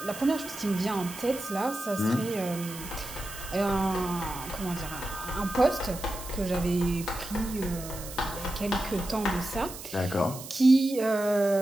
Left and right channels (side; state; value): right; noise; hiss, 12 dB below the sound